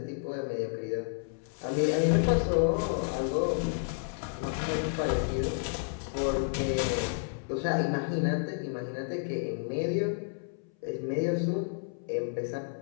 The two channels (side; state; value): right; silent; 57 dB below the other